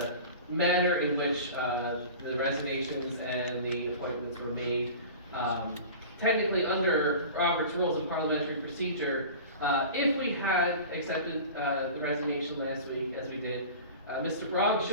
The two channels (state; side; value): inverted; both; correlation -0.37